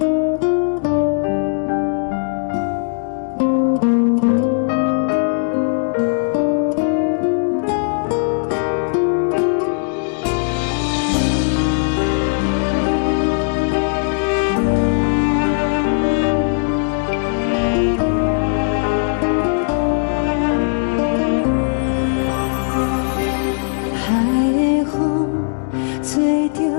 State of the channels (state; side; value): silent; right; digital silence